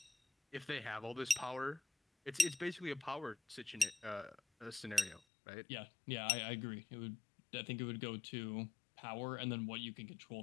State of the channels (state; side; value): drops out; right; at 5.2 s